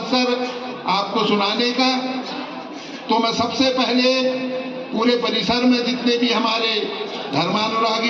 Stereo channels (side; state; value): both; identical; correlation 1.00